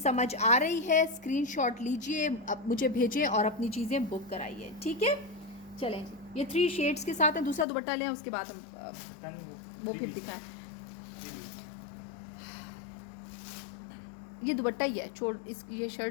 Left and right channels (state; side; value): drops out; right; at 7.7 s